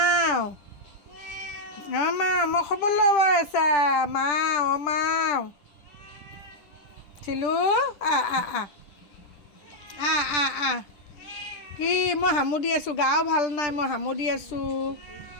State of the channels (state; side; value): late; right; 10 ms